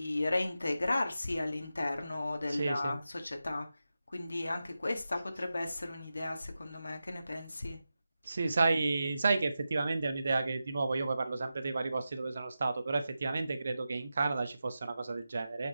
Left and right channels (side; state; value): both; inverted; correlation -0.91